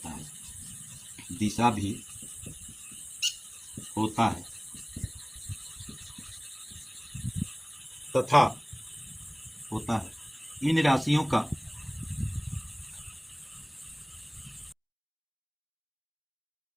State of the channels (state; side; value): identical; both; correlation 1.00